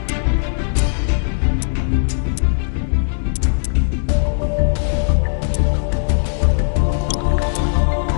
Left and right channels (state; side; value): silent; right; digital silence